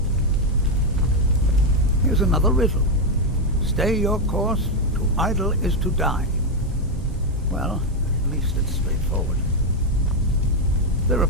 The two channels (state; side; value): normal; both; correlation 0.04